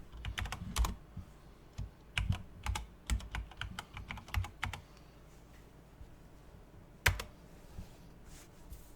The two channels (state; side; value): identical; both; correlation 1.00